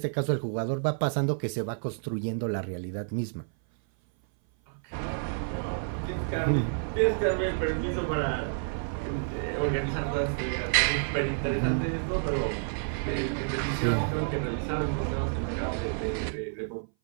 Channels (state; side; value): silent; left; 57 dB below the other